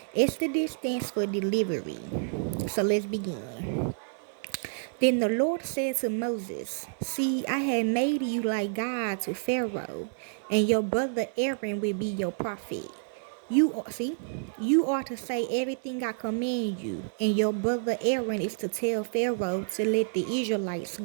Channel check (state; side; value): silent; left; 59 dB below the other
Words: Exodus stands for delivery. So let's begin. Then the Lord said to Moses, "See, I have made you like God to Pharaoh, and your brother Aaron will be your prophet. You are to say everything I command you, and your brother Aaron is to tell Pharaoh to let the Israelites